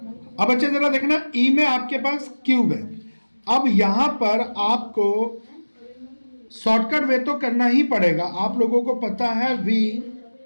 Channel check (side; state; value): both; inverted; correlation -1.00